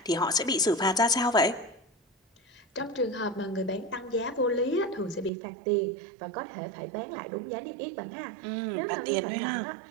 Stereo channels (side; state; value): left; drops out; at 5.3 s